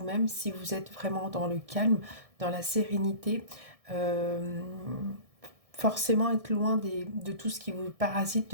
si vous êtes vraiment dans le calme, dans la sérénité, forcément être loin de tout ce qui vous parasite,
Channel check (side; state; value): left; late; 1.6 ms